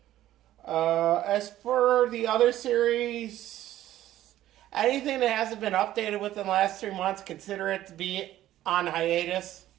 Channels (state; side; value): quieter; left; 13.6 dB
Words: As for the other series, anything that hasn't been updated within the last 3 months, consider it to be on hiatus.